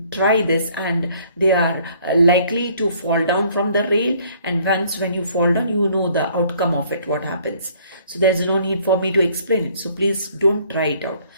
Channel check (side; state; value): both; inverted; correlation -0.60